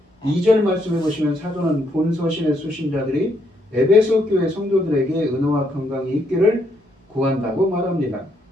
2절 말씀해 보시면 사도는 본 서신의 수신자들이 에베소 교회 성도들에게 은혜와 건강이 있기를 구한다고 말합니다.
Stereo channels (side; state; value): both; normal; correlation 0.74